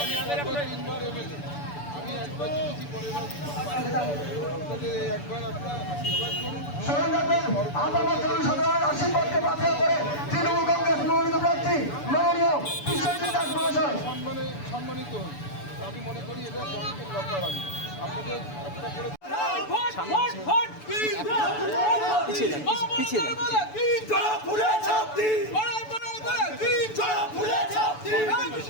স্মরণ রাখবেন আপনার জনসাধারণের আশীর্বাদকে বাতিল করে তৃণমূল কংগ্রেস মনোনীত প্রার্থী মাননীয় বিশ্বজিৎ দাস মহাশয় সম্মানিত হন। আমি মনে করি এটা জনগণের দরকার। আমি আপনাদের একটা করে পিছিয়ে যান, পিছিয়ে যান।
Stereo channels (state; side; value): late; right; 6.9 ms